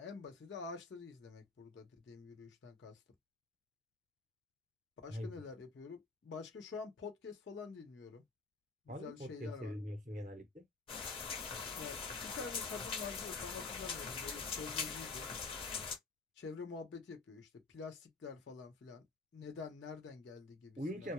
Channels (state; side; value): quieter; right; 4.0 dB